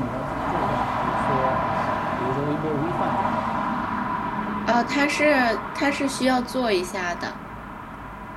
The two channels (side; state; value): both; identical; correlation 1.00